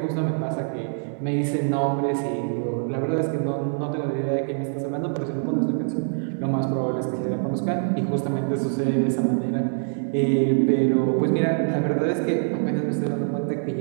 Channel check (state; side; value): silent; left; digital silence